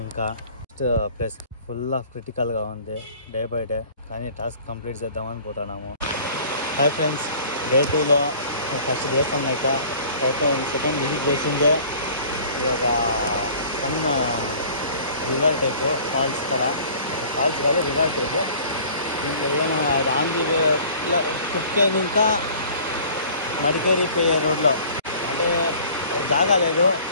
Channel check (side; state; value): both; inverted; correlation -0.49